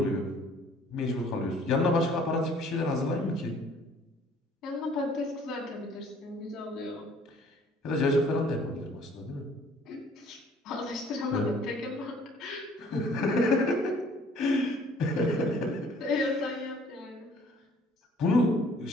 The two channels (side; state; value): both; normal; correlation 0.57